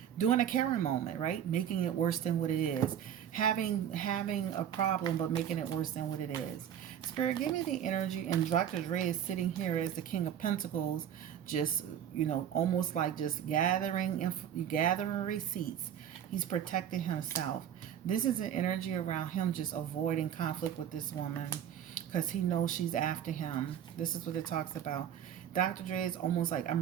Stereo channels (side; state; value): left; quieter; 9.7 dB